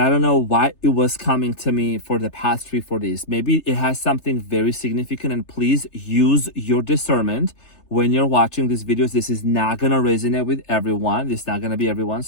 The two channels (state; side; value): late; right; 3.3 ms